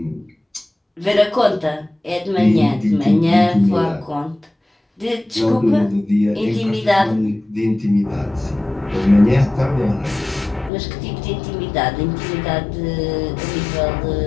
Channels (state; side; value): drops out; right; at 10.7 s